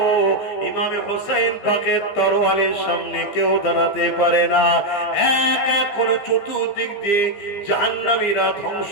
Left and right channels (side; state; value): right; late; 15 ms